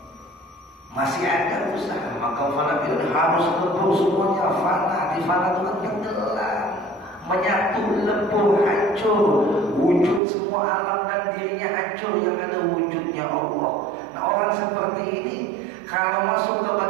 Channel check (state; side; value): drops out; left; at 10.2 s